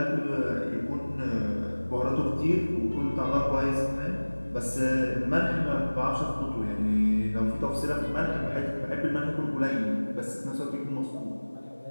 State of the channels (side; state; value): both; inverted; correlation -1.00